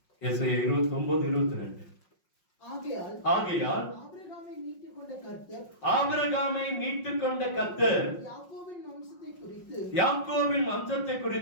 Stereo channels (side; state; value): right; late; 5.5 ms